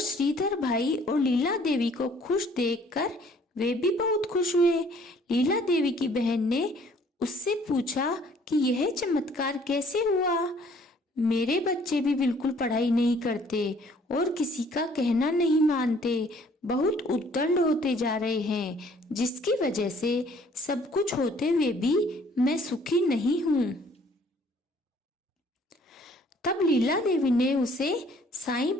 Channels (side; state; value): both; normal; correlation 0.58